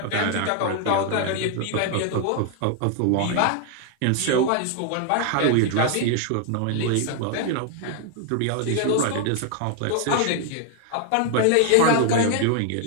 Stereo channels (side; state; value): both; different; correlation 0.00